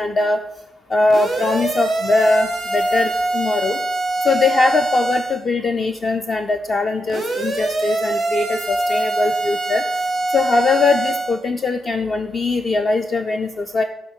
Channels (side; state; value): both; normal; correlation 0.85